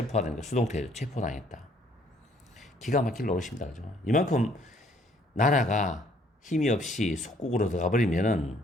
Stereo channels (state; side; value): normal; both; correlation 0.63